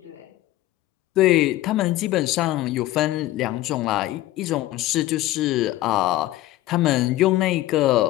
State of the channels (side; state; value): right; quieter; 16.0 dB